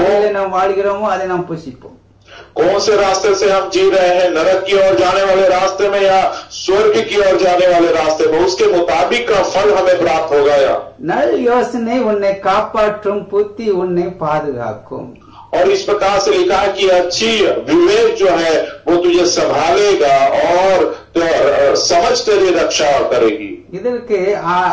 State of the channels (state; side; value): identical; both; correlation 1.00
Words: நாம் வாழ்கிறோமோ அதை நாம் புசிப்போம். कौन से रास्ते से हम जी रहे हैं, नरक की ओर जाने वाले रास्ते में या स्वर्ग की ओर जाने वाले रास्ते में, उसके मुताबिक का फल हमें प्राप्त होगा। या நல் யோசனை உன்னை காப்பாற்றும், புத்தி உன்னை பாதுகாக்கும். और इस प्रकार से लिखा है कि अच्छी विवेक जो है वो तुझे संभालेगा और समझ तेरी रक्षा करेगी। இதற்கு